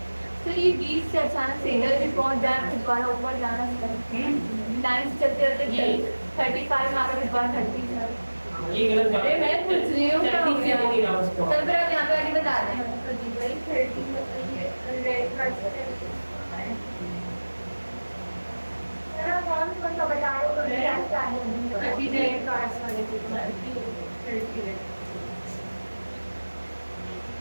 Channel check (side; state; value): both; inverted; correlation -1.00